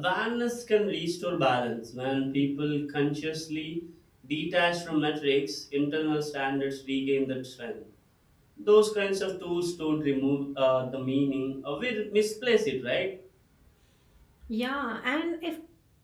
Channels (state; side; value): identical; both; correlation 1.00